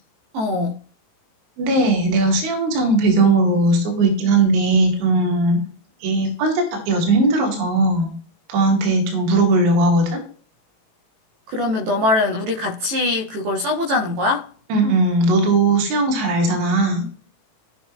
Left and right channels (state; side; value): late; left; 18 ms